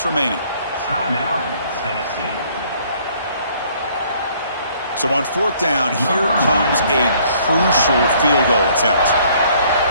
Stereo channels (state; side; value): inverted; both; correlation -0.61